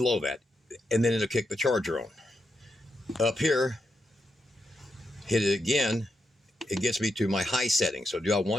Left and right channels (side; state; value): both; normal; correlation 0.85